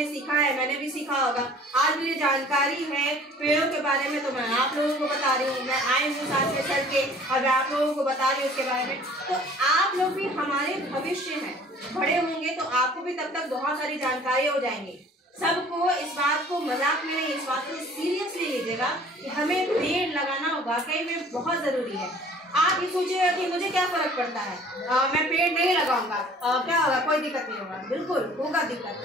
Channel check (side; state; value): both; normal; correlation 0.51